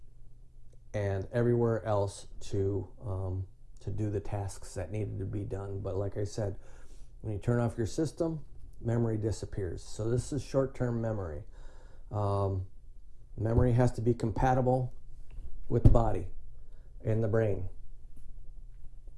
and everywhere else to do the tasks that needed to be done. But like I said, when you turn off your system, memory disappears. So this is short-term memory. Memory has to be compatible with the body and the brain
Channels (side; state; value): both; identical; correlation 1.00